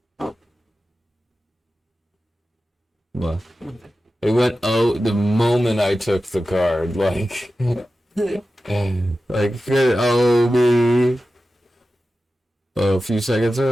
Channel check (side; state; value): both; normal; correlation 0.93